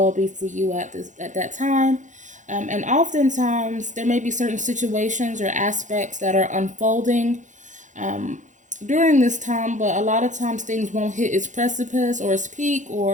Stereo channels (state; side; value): late; left; 0.36 ms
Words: be for you at that time. And oftentimes there may be certain situations or aspects that are unfolding um, during this time, but a lot of times things won't hit its precipice or its peak